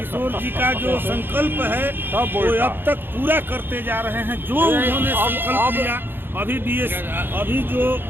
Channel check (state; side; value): late; left; 0.10 ms